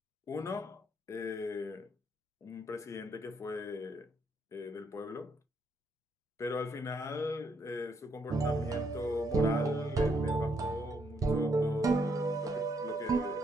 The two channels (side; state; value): both; normal; correlation 0.74